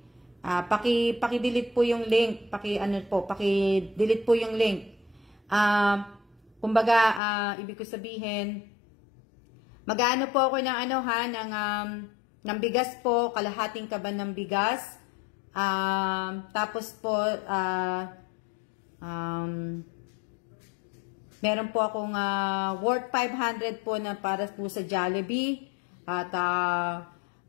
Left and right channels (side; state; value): right; drops out; at 7.2 s